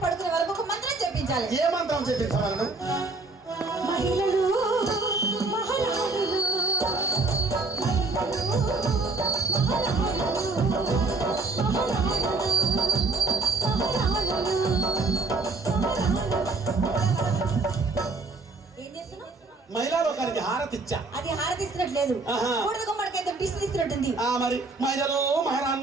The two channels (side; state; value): left; quieter; 3.5 dB